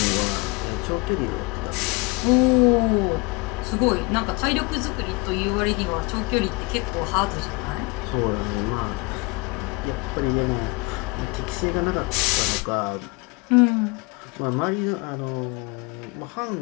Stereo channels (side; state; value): right; quieter; 27.1 dB